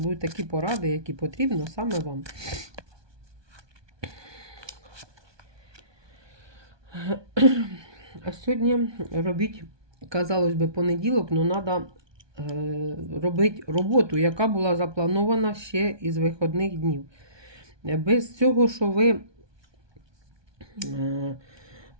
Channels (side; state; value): left; late; 1.2 ms